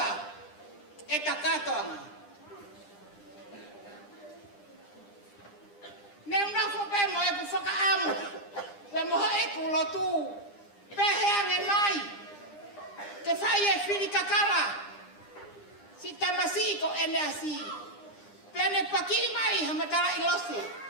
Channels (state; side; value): late; right; 9.9 ms